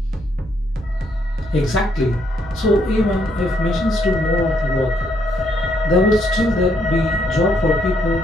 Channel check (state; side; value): normal; both; correlation 0.73